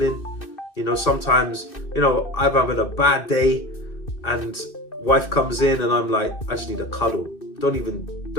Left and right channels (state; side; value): late; right; 2.6 ms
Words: You know, sometimes, you know, I'm having a bad day and wife comes in and I'm like, I just need a cuddle. Don't even